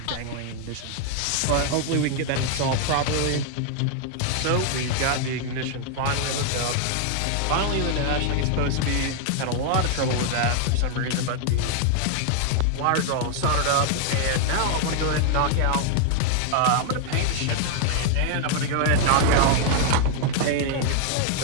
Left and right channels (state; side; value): different; both; correlation 0.00